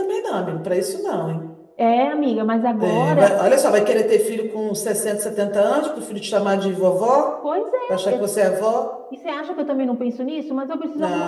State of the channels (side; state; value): both; identical; correlation 1.00